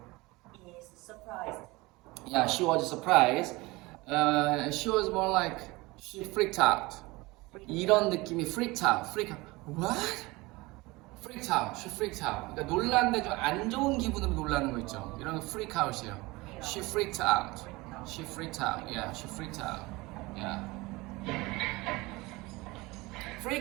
is surprised. Yeah, she was surprised. She was more like she freaked out. 이런 느낌이 freaked out. What? Freaked out. She freaked out. 그러니까 놀랐는데 좀 안 좋은 기분으로 놀라는 거 있죠. 이런 거 freak out이에요. She freaked out. She freaked out. Yeah, she freaked out. Yeah.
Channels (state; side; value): quieter; left; 22.4 dB